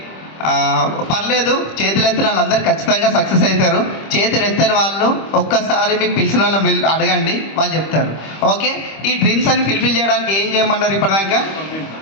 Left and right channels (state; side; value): late; right; 25 ms